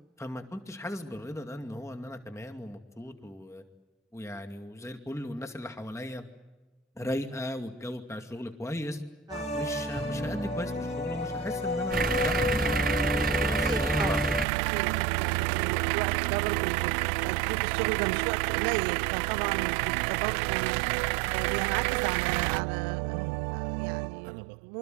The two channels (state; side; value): drops out; left; at 14.5 s